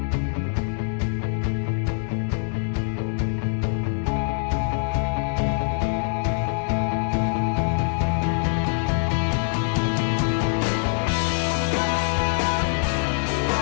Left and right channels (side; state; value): right; silent; 63 dB below the other